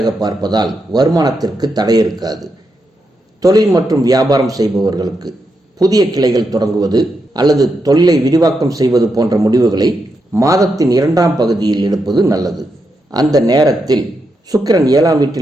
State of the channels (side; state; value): both; normal; correlation 0.84